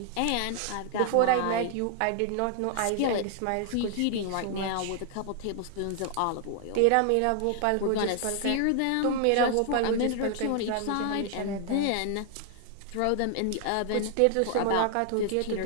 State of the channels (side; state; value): both; different; correlation 0.00